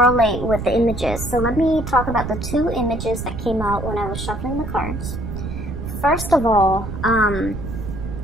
with the images. So let me talk about the two images that came out when I was shuffling the cards. First of all,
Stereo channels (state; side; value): noise; right; rumble, 7 dB below the sound